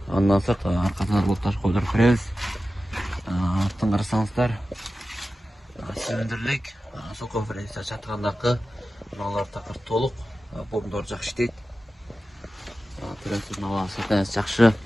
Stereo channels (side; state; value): both; normal; correlation 0.94